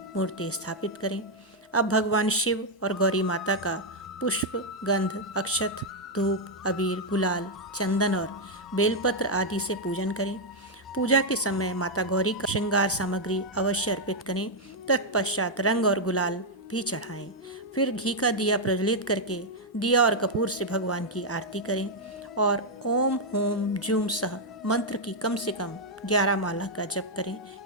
मूर्ति स्थापित करें। अब भगवान शिव और गौरी माता का पुष्प, गंध, अक्षत, धूप, अबीर, गुलाल, चंदन और बेलपत्र आदि से पूजन करें। पूजा के समय माता गौरी का श्रृंगार सामग्री अवश्य अर्पित करें। तत्पश्चात रंग और गुलाल भी चढ़ाएं। फिर घी का दिया प्रज्वलित करके दिया और कपूर से भगवान की आरती करें और ओम होम जूम सह मंत्र की कम से कम 11 माला का जप करें।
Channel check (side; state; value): both; normal; correlation -0.01